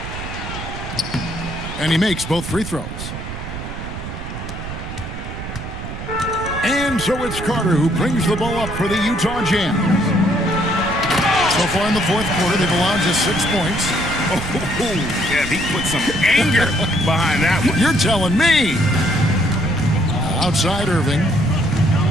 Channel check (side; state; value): right; noise; rumble, 8 dB below the sound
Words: And he makes both free throws. And so it's Carter who brings the ball up for the Utah Jazz. So far in the fourth quarter, they've allowed just 6 points. Oh, yeah, he put some anger behind that one. You're telling me. Outside Irving.